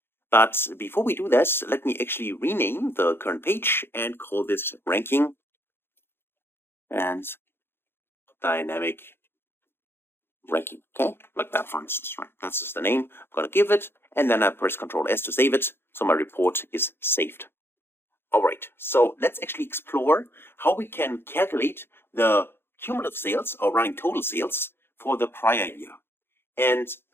But before we do this, let me actually rename the current page and call this ranking and dynamic ranking. Okay, like that for instance, right? That's just the name I'm gonna give it, and then I press Ctrl S to save it, so my report is saved. Alright, so let's actually explore how we can calculate the cumulative sales or running total sales for the prior year. And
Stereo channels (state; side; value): late; right; 0.11 ms